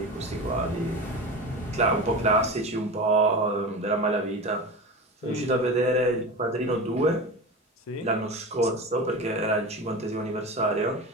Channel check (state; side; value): normal; both; correlation 0.27